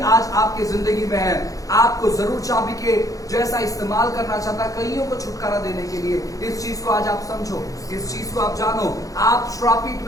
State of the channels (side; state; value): right; late; 0.17 ms